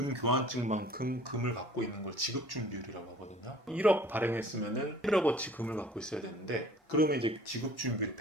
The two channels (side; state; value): both; normal; correlation 0.50